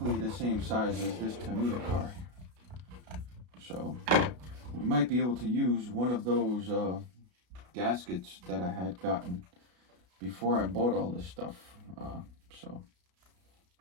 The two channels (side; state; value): left; late; 33 ms